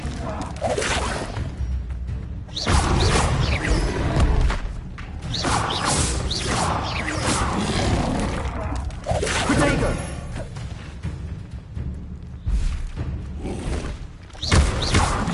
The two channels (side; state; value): both; identical; correlation 1.00